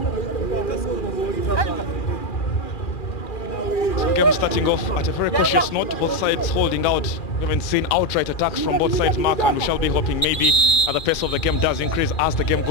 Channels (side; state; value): right; late; 2.4 ms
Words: Game starting off at a very cautious note, both sides holding out. We haven't seen outright attacks from both sides, Mark, and we shall be hoping maybe the pace of the game does increase as the game